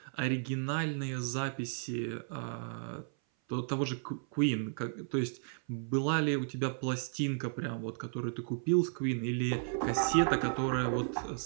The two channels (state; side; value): silent; left; 55 dB below the other